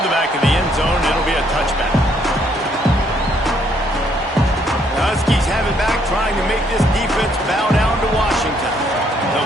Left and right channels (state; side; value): normal; both; correlation 0.69